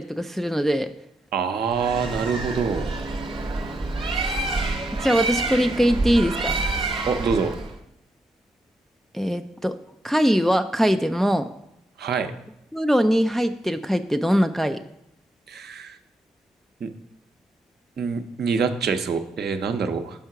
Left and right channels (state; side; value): normal; both; correlation 0.81